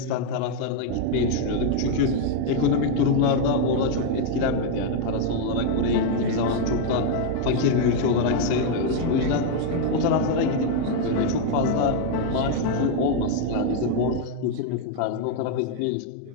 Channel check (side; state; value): both; different; correlation 0.01